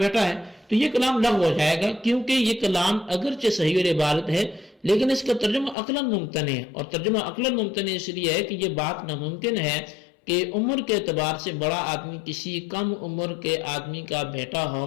بیٹا ہے، تو یہ کلام لغو ہو جائے گا کیونکہ یہ کلام اگرچہ صحیح العبارت ہے لیکن اس کا ترجمہ عقلاً ممتنع ہے، اور ترجمہ عقلاً ممتنع اس لیے ہے کہ یہ بات ناممکن ہے کہ عمر کے اعتبار سے بڑا آدمی کسی کم عمر کے آدمی کا بیٹا ہو۔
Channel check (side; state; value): right; drops out; at 5.8 s